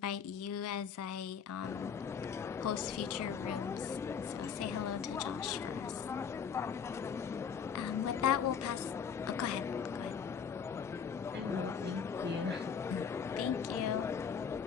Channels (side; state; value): right; quieter; 6.9 dB